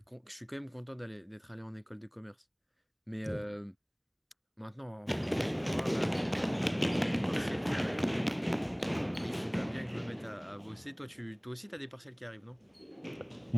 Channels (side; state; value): both; identical; correlation 1.00